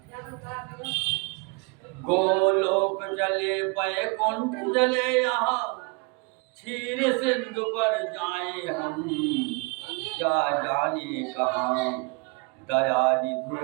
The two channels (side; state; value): left; quieter; 31.9 dB